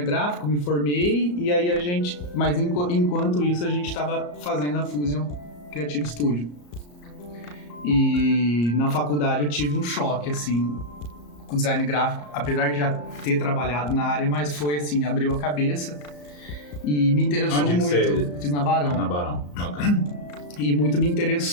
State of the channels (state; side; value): late; right; 34 ms